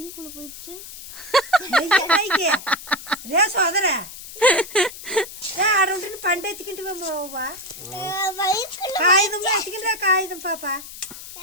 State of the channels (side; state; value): left; noise; hiss, 13 dB below the sound